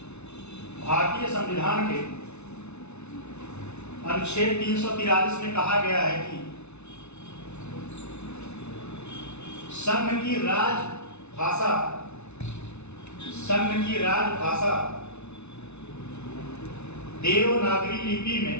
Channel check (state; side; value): late; right; 0.81 ms